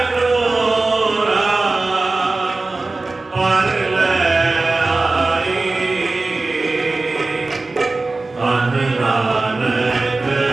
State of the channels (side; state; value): left; quieter; 3.4 dB